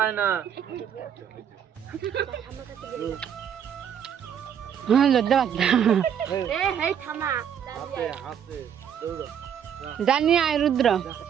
না। হ্যাঁ লজ্জা পাচ্ছে। জানি আয় রুদ্র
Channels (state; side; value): quieter; left; 8.6 dB